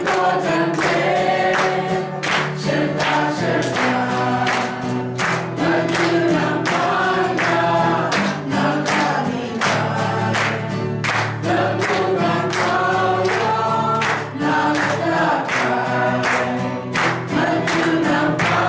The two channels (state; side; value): identical; both; correlation 1.00